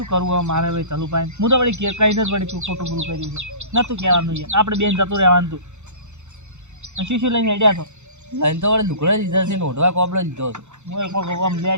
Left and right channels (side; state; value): left; late; 0.83 ms